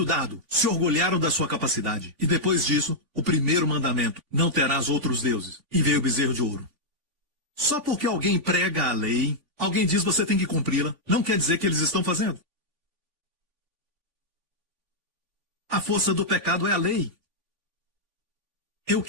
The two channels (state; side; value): late; left; 2.8 ms